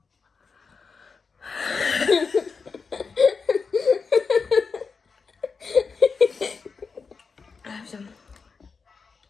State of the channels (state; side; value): quieter; right; 5.1 dB